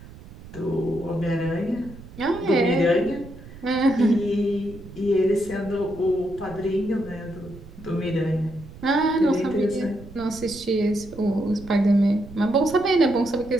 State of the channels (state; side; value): noise; right; rumble, 17 dB below the sound